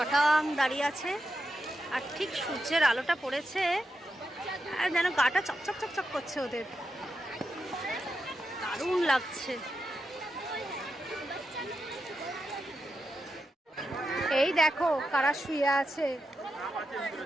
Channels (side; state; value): both; normal; correlation 0.87